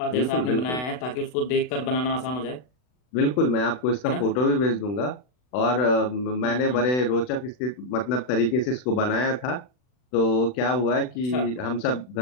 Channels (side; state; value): right; late; 40 ms